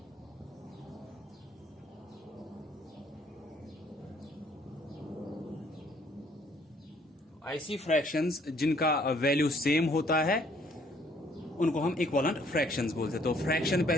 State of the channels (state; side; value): normal; both; correlation 0.63